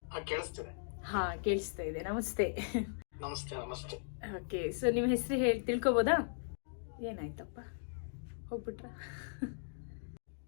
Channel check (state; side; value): silent; right; digital silence